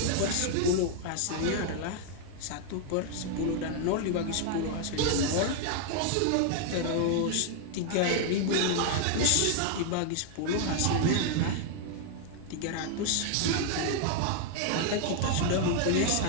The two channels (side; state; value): both; different; correlation 0.00